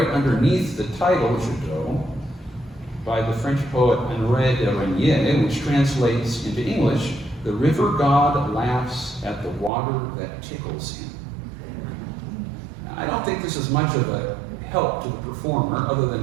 underneath the title, Jadot, by the French poet Henri de Régnier, which translates into English, "The river god laughs at the water that tickles him." Now, I don't think this is much of a help to the performer, other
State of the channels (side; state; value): left; drops out; at 9.7 s